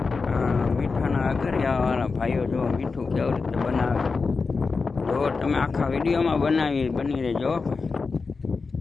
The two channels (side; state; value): right; quieter; 4.5 dB